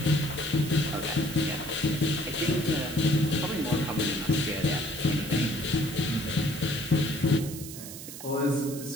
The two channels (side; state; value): right; noise; hiss, 12 dB below the sound